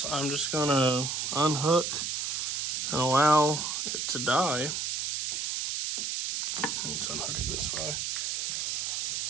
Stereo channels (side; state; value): right; noise; hiss, 1 dB below the sound